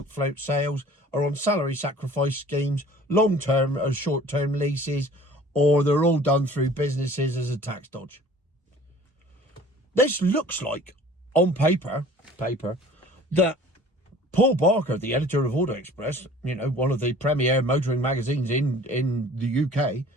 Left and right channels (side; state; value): both; normal; correlation 0.49